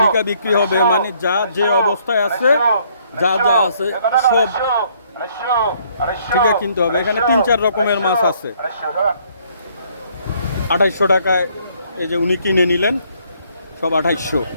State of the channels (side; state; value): both; inverted; correlation -0.65